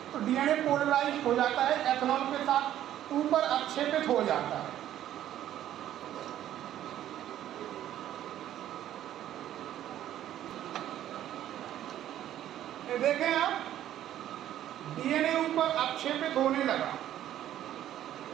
तो DNA पोलराइज हो जाता है, एथेनॉल के साथ ऊपर आक्षेपित हो जाता है। ये देखें आप, डीएनए ऊपर अक्षेपित होने लगा,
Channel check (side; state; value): left; quieter; 12.0 dB